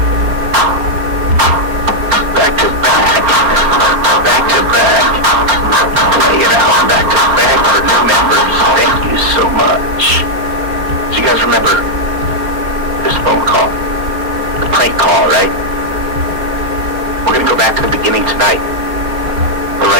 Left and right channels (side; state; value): left; late; 4.4 ms